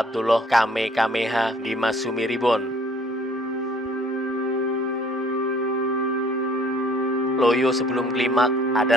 Kamehameha di Masumi Ribon. Loyo sebelum klimak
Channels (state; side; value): normal; both; correlation 0.57